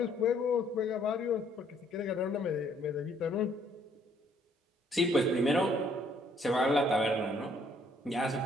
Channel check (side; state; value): both; normal; correlation 0.65